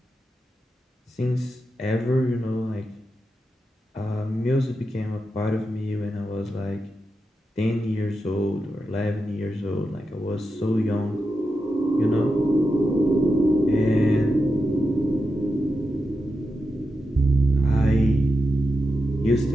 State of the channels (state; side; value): normal; both; correlation 0.88